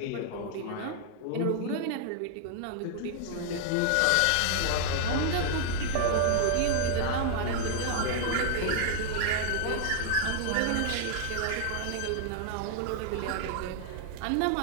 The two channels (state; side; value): different; both; correlation -0.01